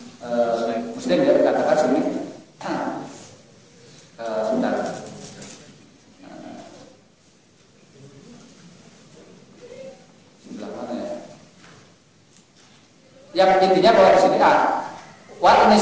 Muslim ya dikatakan sini. Sebentar. Sebelah mana ya? Yang intinya bahwa di sini ini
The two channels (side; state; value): both; identical; correlation 1.00